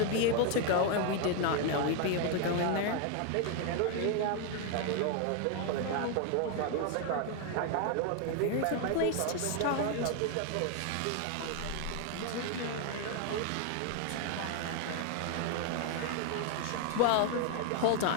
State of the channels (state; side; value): different; both; correlation 0.01